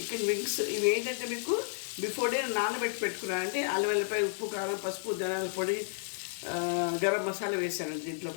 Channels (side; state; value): right; silent; 57 dB below the other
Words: వింగ్స్ ఇవి ఏంటంటే మీకు బిఫోర్ డే నానబెట్టి పెట్టుకున్నానంటే అల్లం వెల్లిపాయ, ఉప్పు, కారం, పసుపు, ధనియాల పొడి, గరం మసాలా వేసాను దీంట్లో